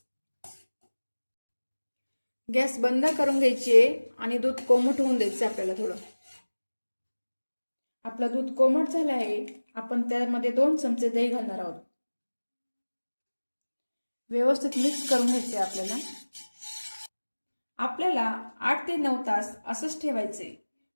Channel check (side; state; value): both; inverted; correlation -1.00